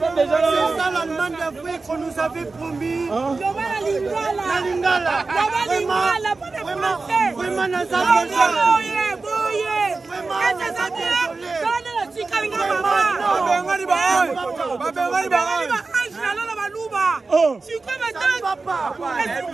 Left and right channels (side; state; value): left; quieter; 3.9 dB